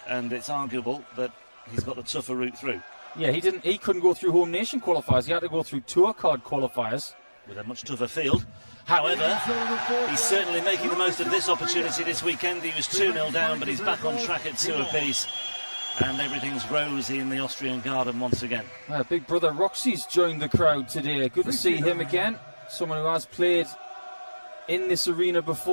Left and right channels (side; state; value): both; inverted; correlation -1.00